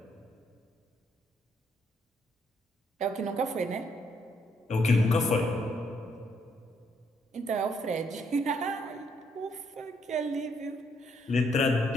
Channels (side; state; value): both; normal; correlation 0.72